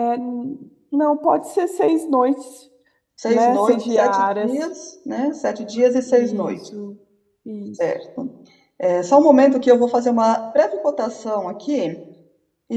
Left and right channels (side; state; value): both; identical; correlation 1.00